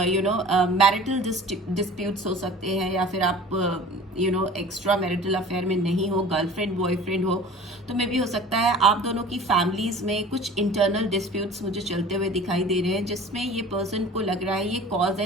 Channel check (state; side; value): normal; both; correlation 0.42